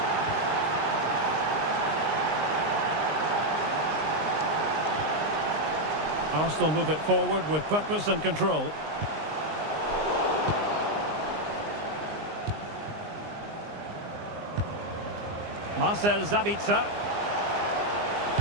Arsenal move it forward with purpose and control. Marcel Sabitzer.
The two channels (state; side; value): late; left; 19 ms